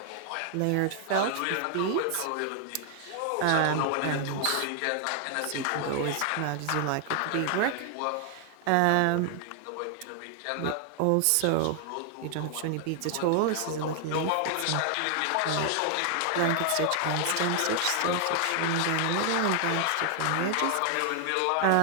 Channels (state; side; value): different; both; correlation 0.00